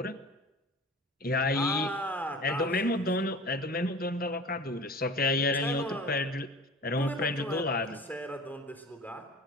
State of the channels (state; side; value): normal; both; correlation 0.38